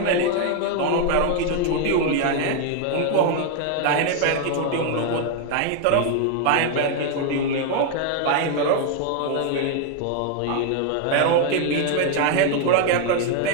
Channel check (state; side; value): different; both; correlation 0.00